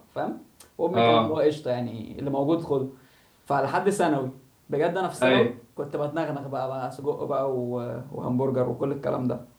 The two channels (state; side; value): identical; both; correlation 1.00